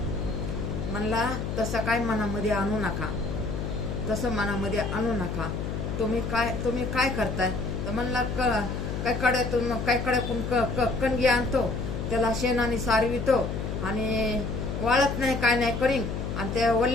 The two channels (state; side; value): noise; left; hum, 3 dB below the sound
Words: म्हणला तसं काय मनामध्ये आणू नका, तसं मनामध्ये आणू नका. तुम्ही काय करताय. तर म्हणला काय कड्यातून कणगी आणतो, त्याला शेणाने सारवितो आणि वाळत नाही काय नाही करीन आणि त्या